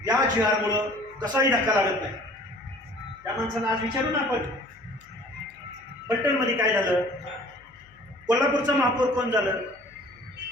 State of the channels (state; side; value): noise; left; hum, 29 dB below the sound